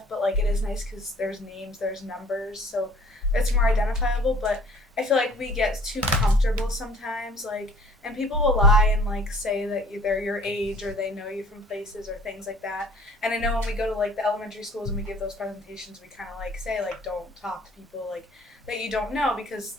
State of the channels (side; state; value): both; normal; correlation 0.53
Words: but, like, it is nice because there's names, there's numbers, so it's more identifiable, but I feel like we get too comfortable sometimes, like, and people will lie and, like, say that they're your age or they know you from places or things like that. And I know when we go to, like, the elementary schools and we give those presentations, we kind of, like, say, like, don't talk to people, like, that you don't know because